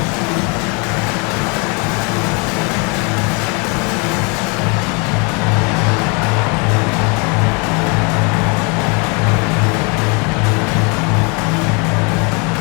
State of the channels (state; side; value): quieter; right; 32.4 dB